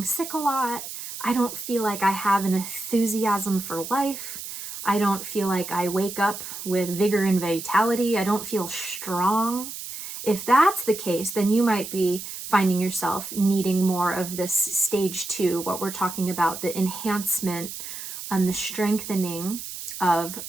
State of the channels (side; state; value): right; noise; hiss, 9 dB below the sound